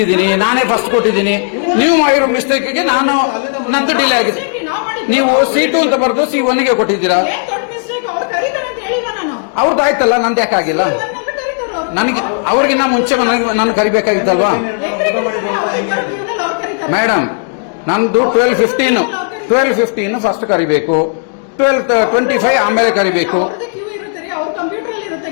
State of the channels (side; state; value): right; silent; 64 dB below the other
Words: ನಾನೇ ಫಸ್ಟ್ ಕೊಟ್ಟಿದ್ದೀನಿ. ನೀವು ಮಾಡಿರೋ ಮಿಸ್ಟೇಕ್ಗೆ ನಂದು ಡಿಲೇ ಆಗಿದೆ. ನೀವು C2 ಅಂತ ಬರೆದು C1 ಗೆ ಕೊಟ್ಟಿದ್ದೀರಾ. ಏನ್ ದೊಡ್ಡ ಮಿಸ್ಟೇಕ್, ಅವ್ರು ಕರೀತಾರೆ ಅಂತ ಹೇಳಿಲ್ವಾ ನಾನು? ಅವ್ರದ್ದು ಆಯ್ತಲ್ಲ, ನಂದು ಯಾಕಾಗಿಲ್ಲ? ನನಗೆ ಅವ್ರಿಗಿನ್ನ ಮುಂಚೆ ನನ್ನ ಕರಿಬೇಕಾಗಿತ್ತಲ್ವಾ ಮೇಡಮ್? ನಂದು 12:15 ಫಸ್ಟ್ ಕರಿಬೇಕು, 12:25 ಆಮೇಲೆ ಕರಿಬೇಕು.